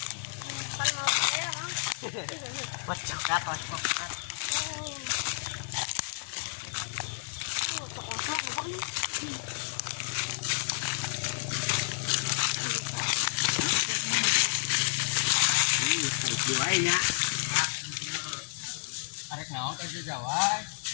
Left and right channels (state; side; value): silent; right; 57 dB below the other